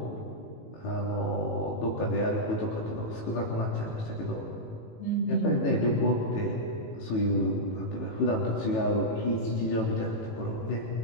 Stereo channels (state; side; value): late; right; 18 ms